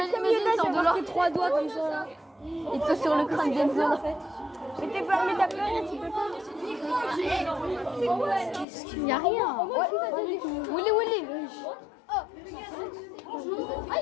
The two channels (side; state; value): right; drops out; at 8.7 s